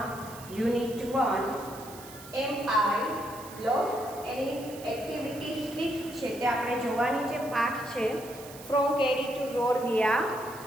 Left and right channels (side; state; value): right; noise; hiss, 17 dB below the sound